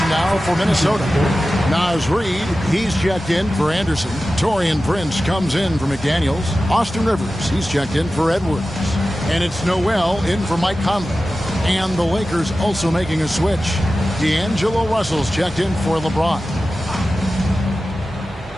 now for Minnesota. Naz Reid, he's checked in for Anderson. Taurean Prince comes in for McDaniels. Austin Rivers, he's checked in for Edwards. And it's Noel in for Mike Conley. And the Lakers also making a switch. D'Angelo Russell's checked in for LeBron.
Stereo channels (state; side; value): normal; both; correlation 0.94